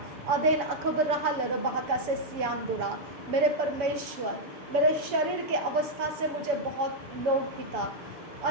अदेन अखब रहल रबाका से सियांदुरा। मेरे परमेश्वर, मेरे शरीर के अवस्था से मुझे बहुत लोग पिता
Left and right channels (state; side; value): late; left; 7.0 ms